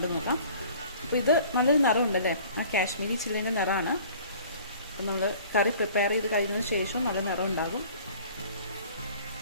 നോക്കാം. അപ്പോൾ ഇത് നല്ലൊരു നിറമുണ്ടല്ലേ, ആ കാശ്മീരി ചില്ലീൻ്റെ നിറമാണ്. അപ്പോൾ നമ്മൾ കറി പ്രിപ്പയർ ചെയ്ത് കഴിഞ്ഞതിന് ശേഷം നല്ല നിറം ഉണ്ടാകും.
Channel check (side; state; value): both; inverted; correlation -0.49